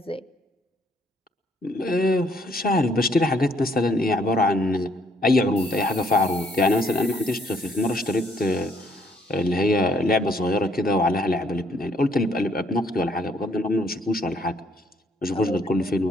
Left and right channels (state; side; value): normal; both; correlation 0.67